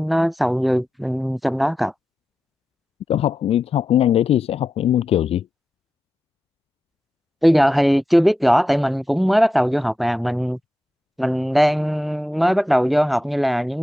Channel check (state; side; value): normal; both; correlation 0.90